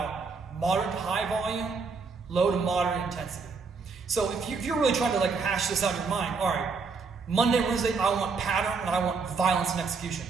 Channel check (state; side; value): quieter; left; 4.7 dB